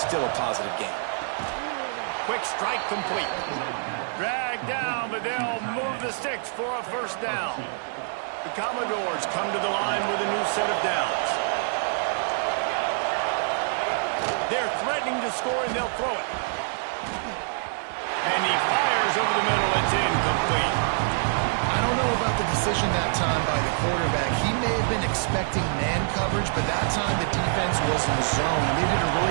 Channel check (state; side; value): silent; left; 56 dB below the other